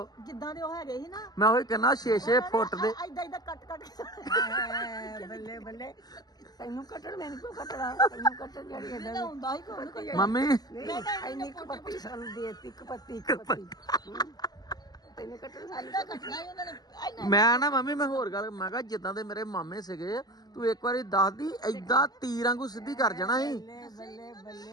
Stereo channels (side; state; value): right; late; 0.19 ms